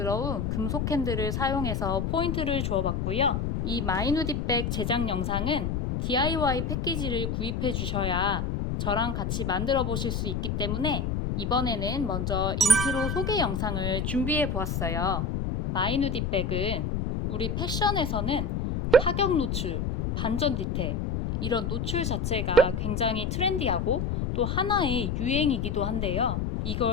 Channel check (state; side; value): noise; left; rumble, 1 dB below the sound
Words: 금속 핸들을 사용해서 포인트를 주어봤고요. 이 마이 누디백 제작 영상은 DIY 패키지를 구입해 주셔야 저랑 같이 만들어 보실 수 있기 때문에 이번에는 먼저 인트로 소개 영상을 준비해 보았어요. 마이 누디백은 우리 패션에서는 파격 노출, 반전 디테일 이런 노출 자체가 굉장히 트렌디하고 또 하나의 유행이기도 한데요.